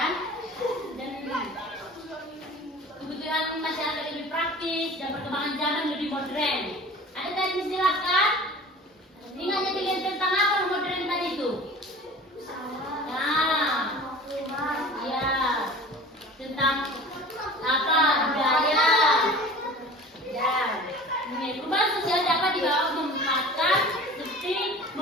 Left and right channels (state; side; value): normal; both; correlation 0.41